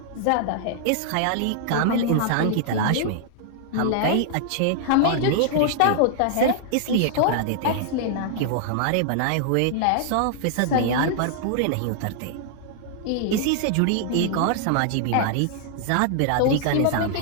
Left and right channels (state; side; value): different; both; correlation -0.01